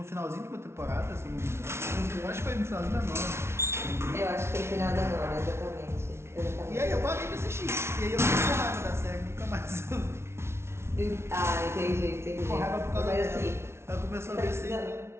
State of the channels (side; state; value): left; late; 0.13 ms